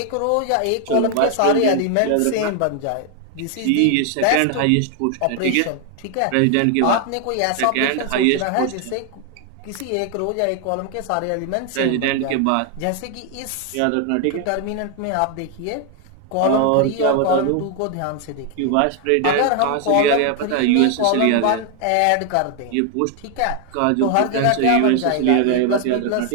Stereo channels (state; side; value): different; both; correlation 0.00